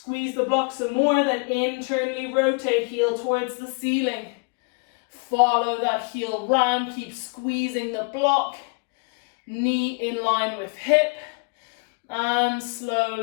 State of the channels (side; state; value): right; quieter; 35.4 dB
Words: the block some more, then internally rotate, heel towards the ceiling. Follow that heel round. Keep squeezing the block. Knee in line with hip, and